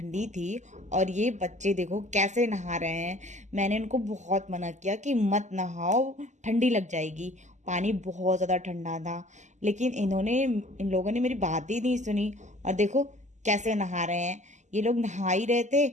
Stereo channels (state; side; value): late; left; 0.34 ms